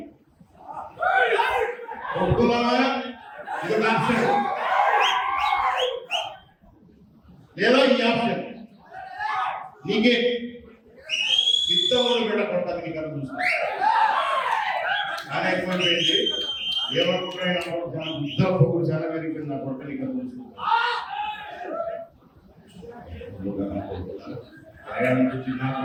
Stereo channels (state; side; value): identical; both; correlation 1.00